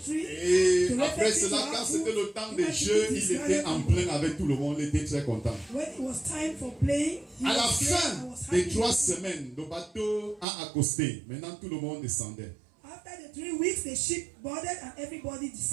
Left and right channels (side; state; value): left; drops out; at 10.5 s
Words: Et to après reflect cela, into quand our c'était food, le temps he des had to jeux, eat his il était en garlic. plein avec tout le monde, il était très content. When it was time for playing, he À la was there fin and was des happy. 3 semaines, le bateau a accosté. Maintenant, tout le monde descendait. After the 3 weeks, the ship boarded and everybody